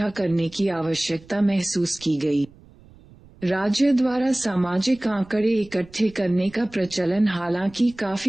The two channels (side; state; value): right; noise; rumble, 24 dB below the sound